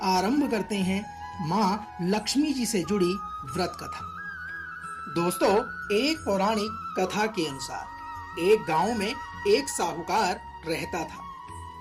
आरंभ करते हैं माँ लक्ष्मी जी से जुड़ी व्रत कथा। दोस्तों, एक पौराणिक कथा के अनुसार एक गांव में एक साहूकार रहता था।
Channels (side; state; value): both; identical; correlation 1.00